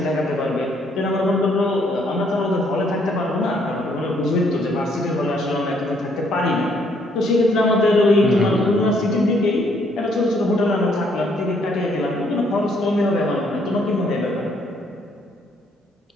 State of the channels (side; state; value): both; normal; correlation 0.68